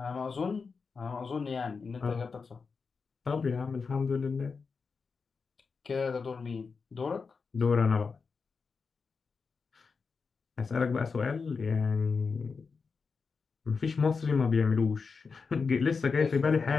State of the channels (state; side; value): quieter; right; 5.0 dB